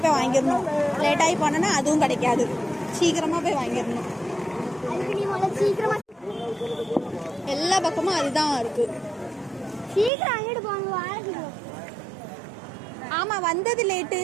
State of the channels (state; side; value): drops out; left; at 10.1 s